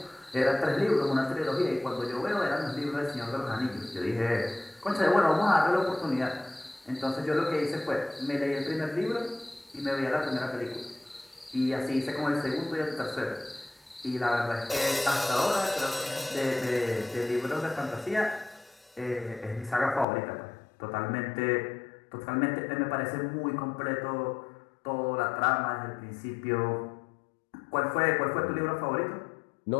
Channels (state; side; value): drops out; right; at 20.1 s